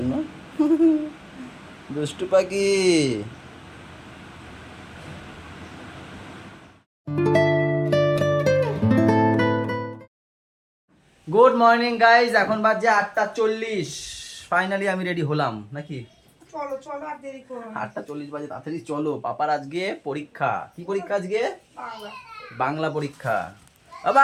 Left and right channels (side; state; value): both; identical; correlation 1.00